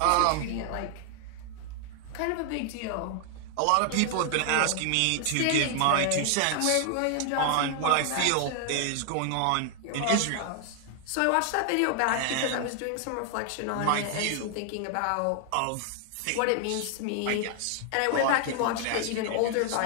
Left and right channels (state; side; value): different; both; correlation 0.00